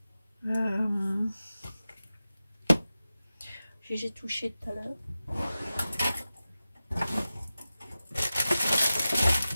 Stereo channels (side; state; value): both; inverted; correlation -0.94